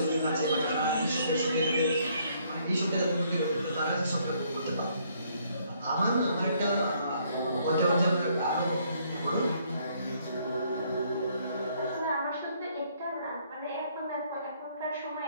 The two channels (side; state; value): both; inverted; correlation -0.67